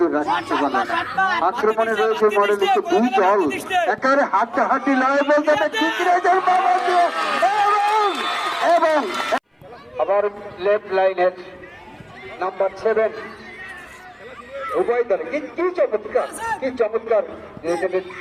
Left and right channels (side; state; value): both; identical; correlation 1.00